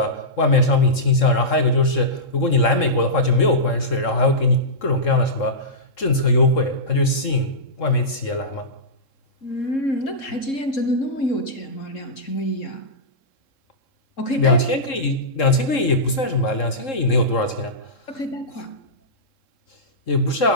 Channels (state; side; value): late; right; 3.7 ms